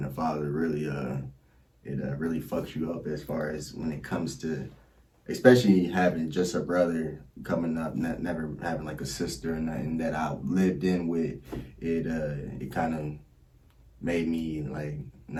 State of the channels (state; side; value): identical; both; correlation 1.00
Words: a father really it really fucks you up, as far as when it comes to, especially having just a brother coming up, never having like a sister and that I lived in with. It kind of made me like